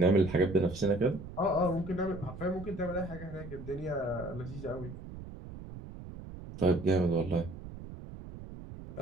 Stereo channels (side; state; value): right; noise; rumble, 12 dB below the sound